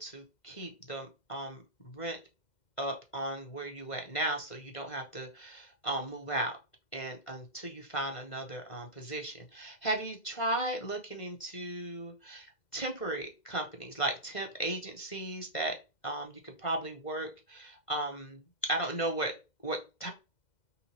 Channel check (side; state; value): right; late; 2.1 ms